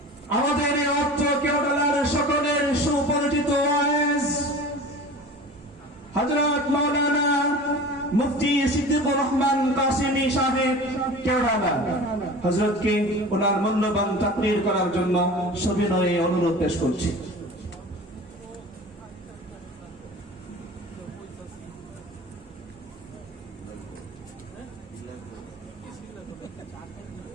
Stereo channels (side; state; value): both; normal; correlation 0.37